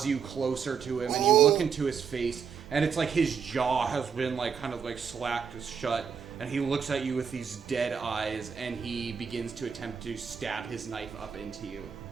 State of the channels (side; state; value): left; quieter; 6.7 dB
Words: you closer to him, and you look into his face, and it's like his jaw has been like kind of like slacked shut, and he looks at you with these dead eyes, and he begins to attempt to stab his knife up into you.